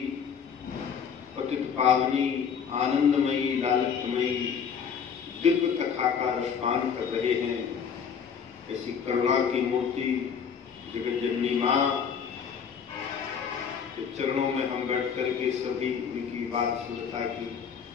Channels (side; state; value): right; quieter; 7.0 dB